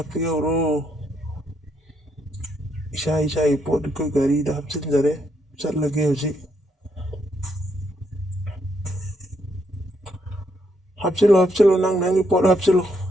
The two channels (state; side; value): normal; both; correlation 0.76